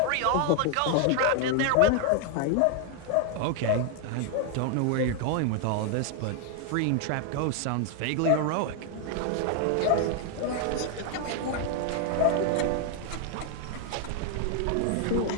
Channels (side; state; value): both; different; correlation 0.00